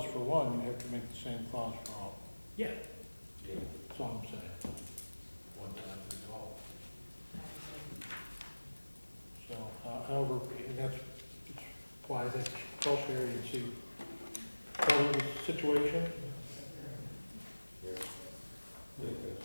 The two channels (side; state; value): both; inverted; correlation -1.00